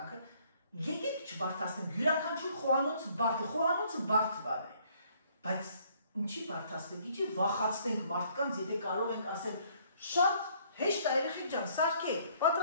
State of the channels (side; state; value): both; inverted; correlation -0.63